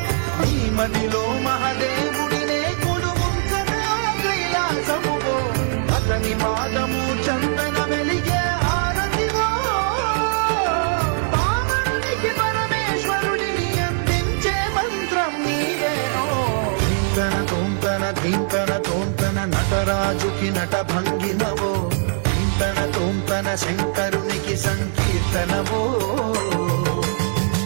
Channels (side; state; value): left; silent; digital silence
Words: నీ మదిలో మహాదేవుడినే కొలుగుంచగా కైలాసమువో అతని పాదము చందన వెలిగే హారతివో పావనునికి పరమేశ్వరుడిని అందించే మంత్రం నీవేనో ధీంతన తోంతన ధీంతన తోంతన నటరాజుకి నట భంగిమవో ధీంతన తోంతన శంకరునికి సంకీర్తనవో